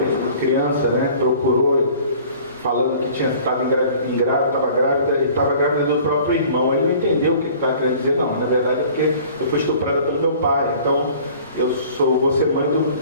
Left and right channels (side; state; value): both; inverted; correlation -0.49